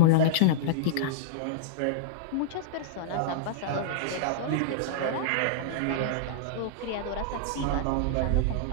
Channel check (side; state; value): both; different; correlation -0.02